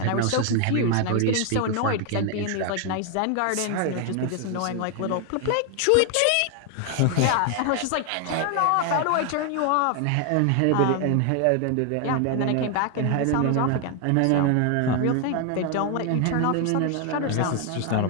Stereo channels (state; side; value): different; both; correlation 0.01